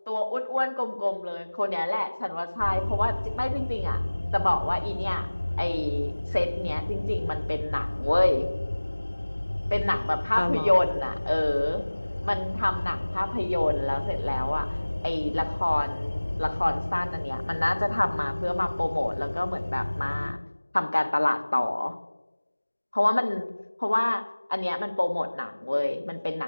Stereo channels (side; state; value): both; inverted; correlation -1.00